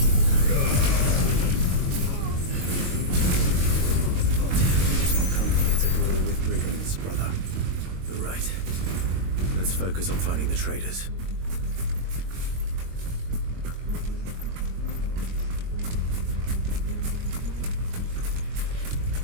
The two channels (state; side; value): late; left; 22 ms